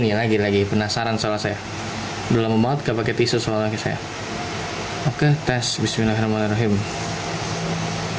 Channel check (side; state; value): both; identical; correlation 1.00